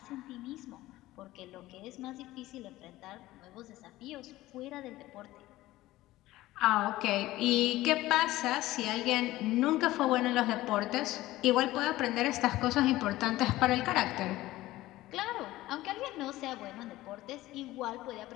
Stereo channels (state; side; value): quieter; right; 16.9 dB